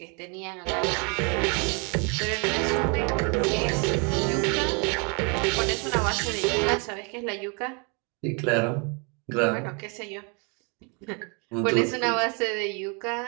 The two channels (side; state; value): left; quieter; 34.1 dB